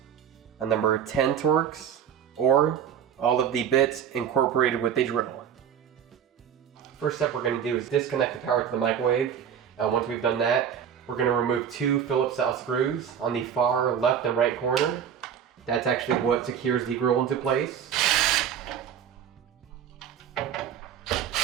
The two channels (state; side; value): quieter; left; 8.6 dB